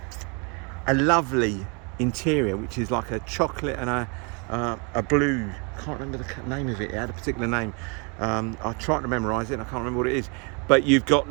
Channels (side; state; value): left; quieter; 33.6 dB